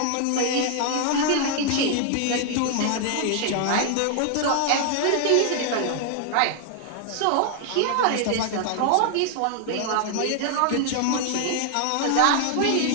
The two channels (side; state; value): both; different; correlation 0.00